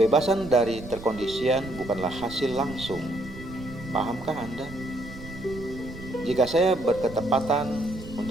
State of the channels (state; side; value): noise; right; rumble, 14 dB below the sound